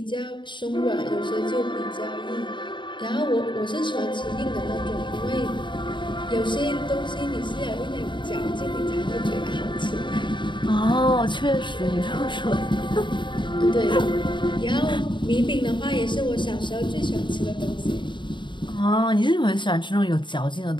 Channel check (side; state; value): right; late; 0.23 ms